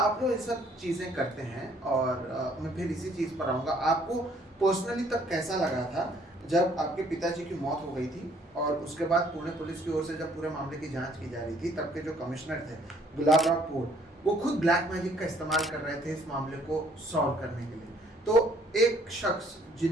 लोग ये सब चीजें करते हैं, और मैं फिर इसी चीज पर आऊंगा। आपको पर्सनली तब कैसा लगा था जब आपके पिताजी की मौत हो गई थी, और उसके बाद पुणे पुलिस की ओर से जब पूरे मामले की जांच की जा रही थी, तब के जो कमिश्नर थे गुलाबराव पोर, वो खुद ब्लैक मैजिक का इस्तेमाल कर रहे थे इस मामले को सॉल्व करने के लिए। तो एक शख्स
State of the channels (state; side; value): normal; both; correlation 0.62